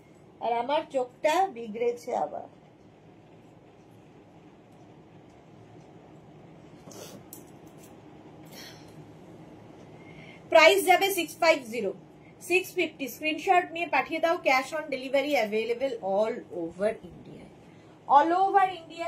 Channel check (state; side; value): identical; both; correlation 1.00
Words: আর আমার চোখটা বিগড়েছে আবার। প্রাইস যাবে 650 650। স্ক্রিনশট নিয়ে পাঠিয়ে দাও। Cash on delivery available all over ইন্ডিয়ায়। অল ওভার